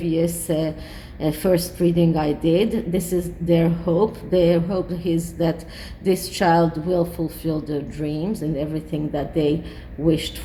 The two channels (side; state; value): both; identical; correlation 1.00